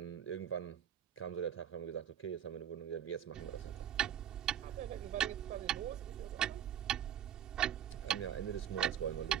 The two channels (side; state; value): left; quieter; 10.0 dB